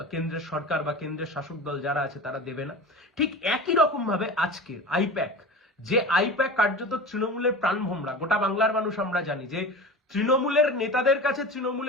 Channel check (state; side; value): normal; both; correlation 0.32